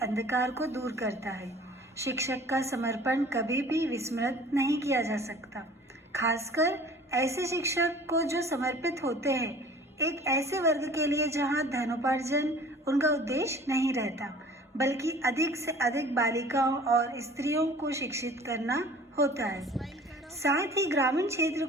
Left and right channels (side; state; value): both; normal; correlation 0.47